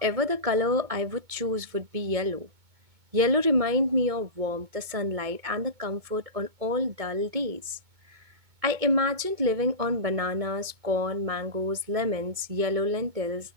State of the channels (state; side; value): late; left; 2.2 ms